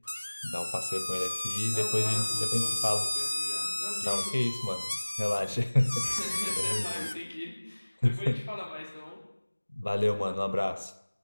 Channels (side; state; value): both; inverted; correlation -1.00